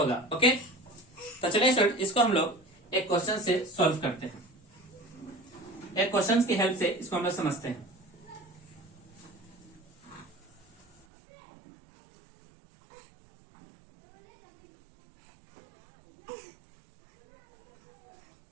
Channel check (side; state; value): left; drops out; at 11.1 s